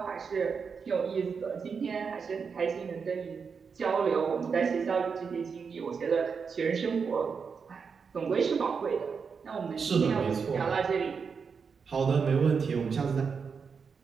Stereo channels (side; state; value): left; quieter; 5.8 dB